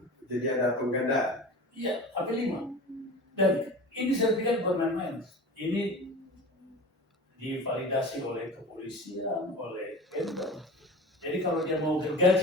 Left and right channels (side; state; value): both; normal; correlation 0.35